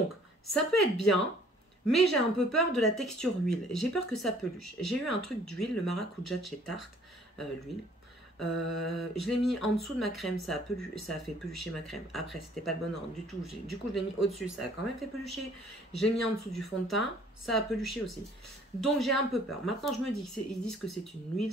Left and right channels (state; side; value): normal; both; correlation 0.56